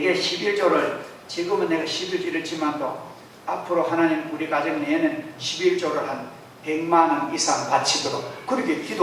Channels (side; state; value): both; identical; correlation 1.00